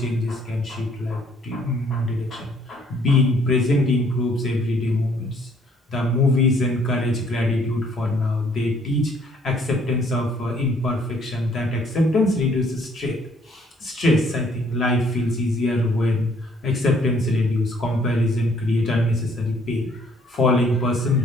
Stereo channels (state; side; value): normal; both; correlation 0.63